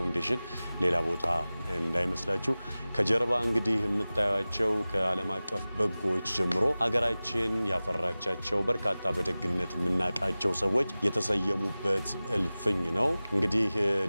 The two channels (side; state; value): both; inverted; correlation -0.97